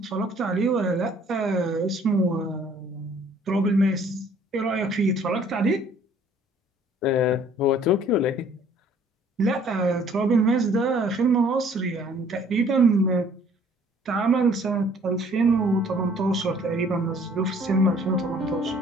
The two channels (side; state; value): both; normal; correlation 0.57